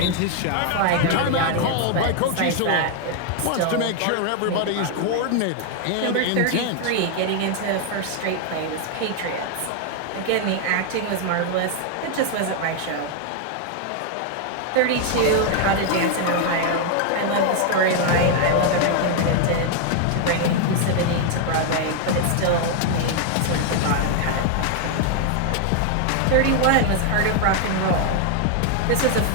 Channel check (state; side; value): different; both; correlation 0.00